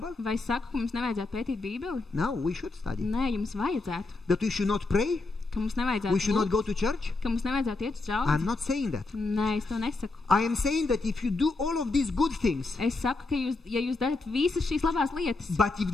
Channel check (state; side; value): quieter; right; 3.4 dB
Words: Vai es saku, ka mums nevajadzētu pētīt Bībeli? No, we should study. Nē, jums vajadzētu. That we should not pray? Ka mums We nevajadzētu should not lūgt, go to church? ka mums nevajadzētu iet uz I'm draugu? not saying that. Nē, es to nesaku. I am saying that if you do all of these good things, Es saku, ka ja jūs darat visas šīs labās lietas, but if